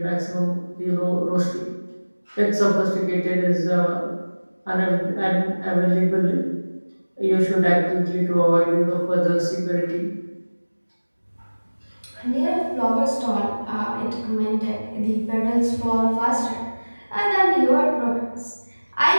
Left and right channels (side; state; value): both; inverted; correlation -1.00